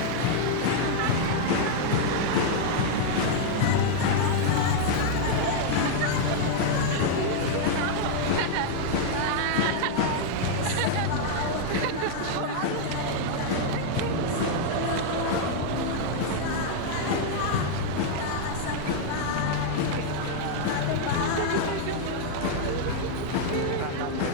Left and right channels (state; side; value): different; both; correlation -0.01